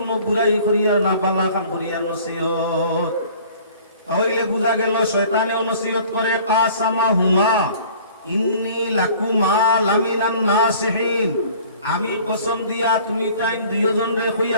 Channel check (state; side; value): inverted; both; correlation -0.50